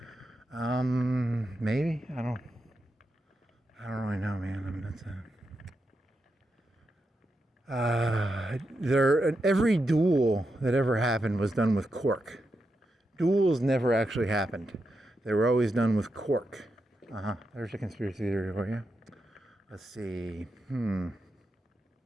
Maybe. I don't really know, man. Every duel that ever happened was done with cork. Duels never actually happened. They were always done with cork. There's a conspiracy theory for you. Let's see.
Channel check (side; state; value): both; normal; correlation 0.86